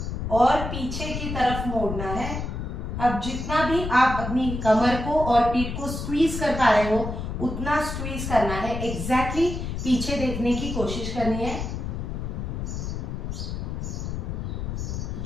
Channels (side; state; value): left; noise; rumble, 4 dB below the sound